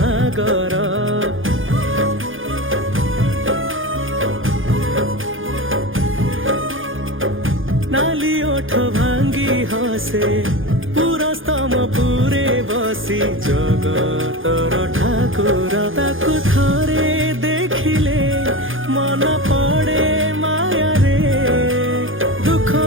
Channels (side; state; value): left; late; 0.58 ms